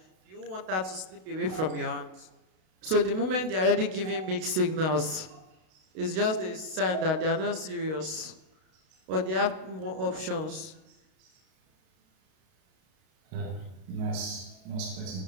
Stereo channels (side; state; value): left; late; 32 ms